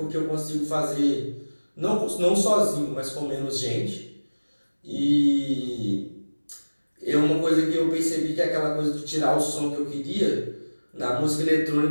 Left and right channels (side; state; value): both; inverted; correlation -1.00